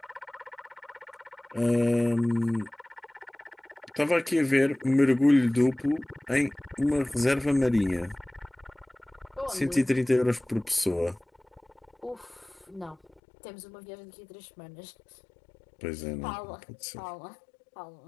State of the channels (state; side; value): drops out; right; at 13.2 s